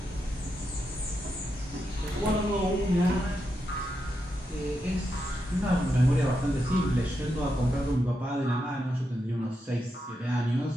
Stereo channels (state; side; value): normal; both; correlation 0.85